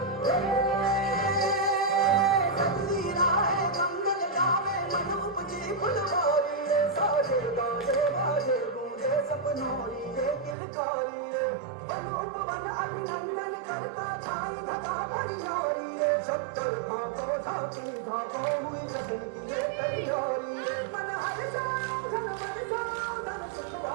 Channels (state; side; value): drops out; left; at 10.6 s